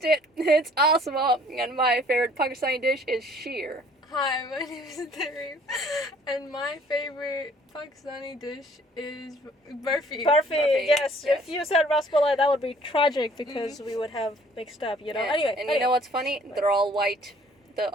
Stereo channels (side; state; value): both; normal; correlation 0.57